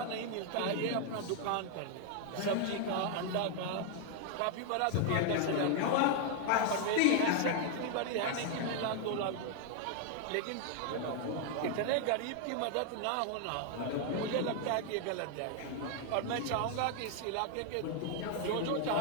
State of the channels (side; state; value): both; different; correlation 0.00